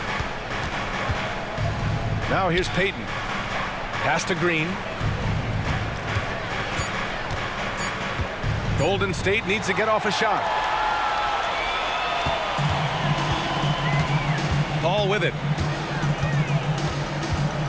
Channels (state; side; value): identical; both; correlation 1.00